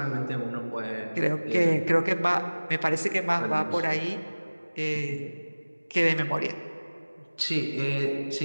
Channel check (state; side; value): inverted; both; correlation -1.00